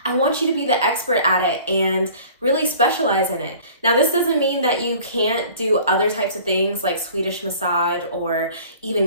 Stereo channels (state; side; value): inverted; both; correlation -0.48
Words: I want you to be the expert at it and really specialize in it. Now, this doesn't mean that you can't do other types of things like Swedish massage or